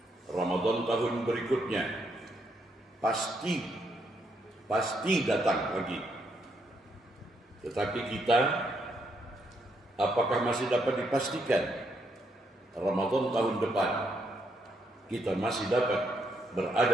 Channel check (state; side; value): normal; both; correlation 0.76